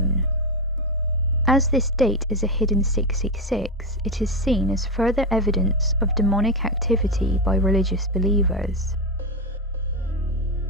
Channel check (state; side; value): normal; both; correlation 0.11